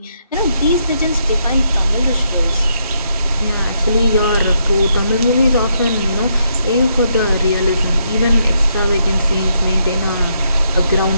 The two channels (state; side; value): inverted; both; correlation -0.76